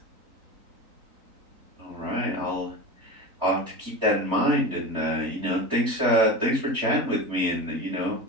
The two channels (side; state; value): left; late; 3.9 ms